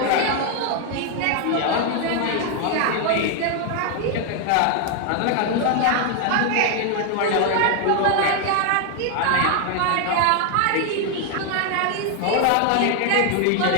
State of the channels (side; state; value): both; different; correlation 0.01